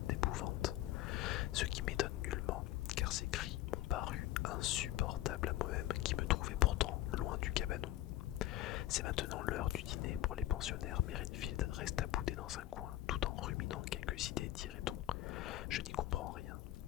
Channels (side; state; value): right; quieter; 14.6 dB